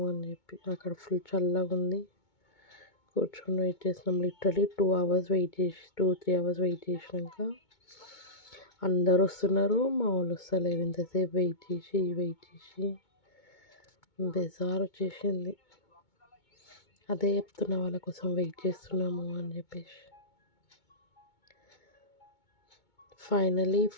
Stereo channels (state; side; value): late; right; 2.2 ms